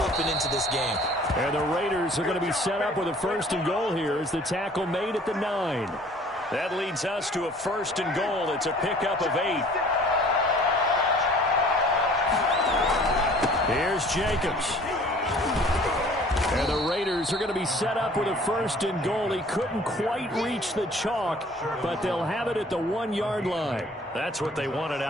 up and into this game. And the Raiders are going to be set up with a 1st and goal here as the tackle made at the 9. That leads us to a 1st and goal. It's a pickup of 8. Here's Jacobs. And the Raiders are going to be set up with a 1st and goal. He couldn't quite reach the chalk, but they'll have it at the 1-yard line. That's what they wanted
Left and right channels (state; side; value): normal; both; correlation 0.52